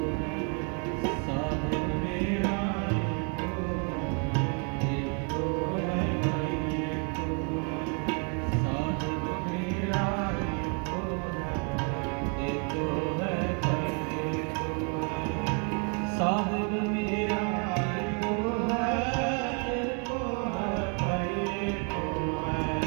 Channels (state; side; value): quieter; left; 38.5 dB